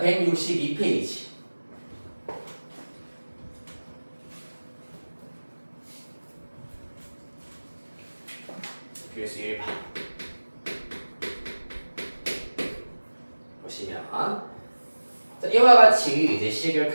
162페이지. 필수 1번. 보시면 자, 이와 같이 이제 식을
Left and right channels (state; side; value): inverted; both; correlation -1.00